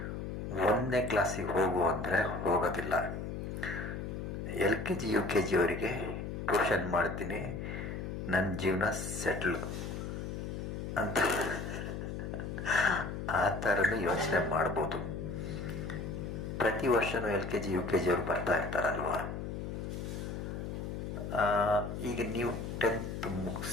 1ನೇ ಕ್ಲಾಸಿಗೆ ಹೋಗು ಅಂದರೆ ಹೋಗೋದಿಲ್ಲ. LKG UKG ಅವರಿಗೆ ಟ್ಯೂಷನ್ ಮಾಡ್ತೀನಿ, ನನ್ನ ಜೀವನ ಸೆಟ್ಲ್ ಅಂತ ಆ ಥರನೂ ಯೋಚನೆ ಮಾಡ್ಬೋದು. ಪ್ರತಿ ವರ್ಷವೂ LKG UKG ಅವರು ಬರ್ತಾ ಇರ್ತಾರಲ್ವ. ಈಗ ನೀವು 10th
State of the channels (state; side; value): noise; left; hum, 5 dB below the sound